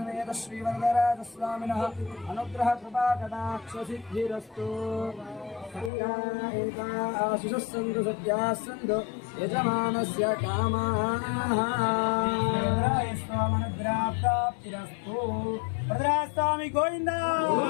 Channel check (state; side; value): drops out; right; at 5.9 s